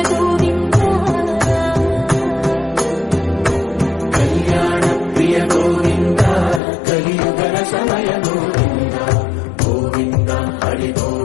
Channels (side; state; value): right; drops out; at 6.6 s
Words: కళ్యాణ ప్రియ గోవింద కలియుగర సమయ గోవింద గోవింద హరి